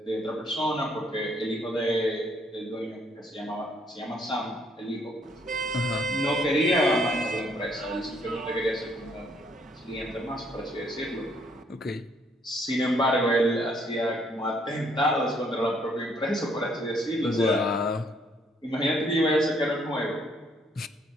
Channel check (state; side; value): normal; both; correlation 0.67